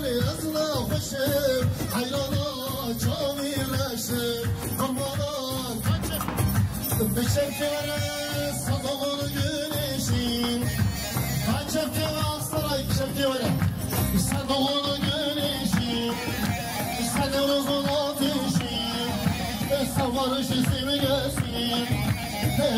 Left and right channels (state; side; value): identical; both; correlation 1.00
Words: esnafışım Hayrana çamireşim Kurbana kaçıp bir şevkere sadağını güneşim Kaçıp saray şevkere sen doğunu güneşim sen eurozun ateşim sen varış ismi gelsin